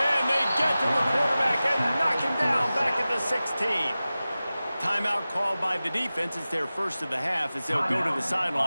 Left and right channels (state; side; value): inverted; both; correlation -0.96